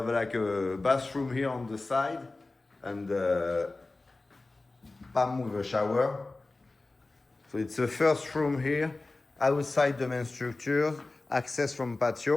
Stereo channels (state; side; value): quieter; right; 3.2 dB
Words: like a bathroom here on the side. And palm with a shower. So it's a first room here. Outside the main structure. Access from